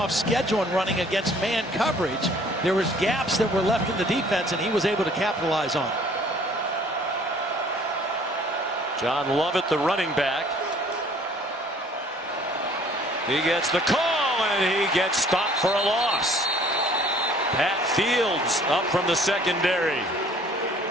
schedule and running against man coverage. There was gaps that were left in the defense, and he was able to capitalize on it. John Lovett, the running back. He gets the call, and he gets stopped for a loss. Pat Fields up from the secondary.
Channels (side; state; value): both; normal; correlation 0.55